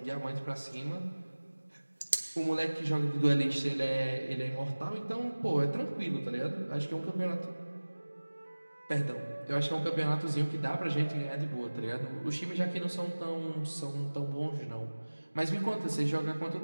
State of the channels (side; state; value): both; inverted; correlation -1.00